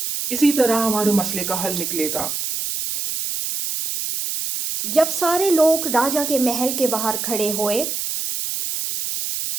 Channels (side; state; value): right; noise; hiss, 3 dB below the sound